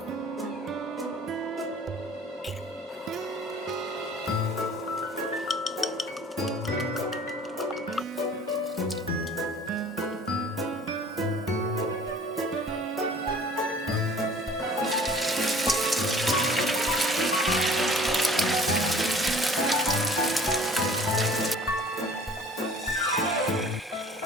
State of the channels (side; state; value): both; normal; correlation 0.50